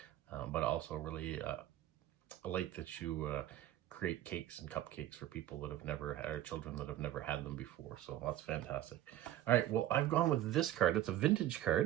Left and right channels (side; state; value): left; quieter; 13.3 dB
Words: But also really I like that you create cakes and cupcakes for people that have never had, or children that have never had them before. So that's fantastic. All right, well, I've gone with this card. It's a vintage